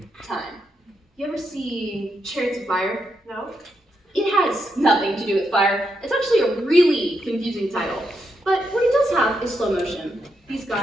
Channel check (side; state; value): both; normal; correlation 0.82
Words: time. You ever see Chariots of Fire? No? It has nothing to do with fire. It's actually a really confusing title. But what it does have is slow motion. These